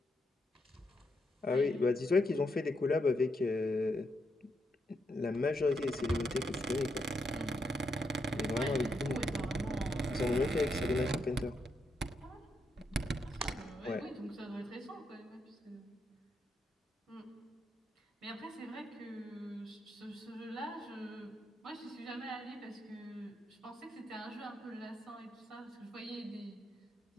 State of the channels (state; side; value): normal; both; correlation 0.81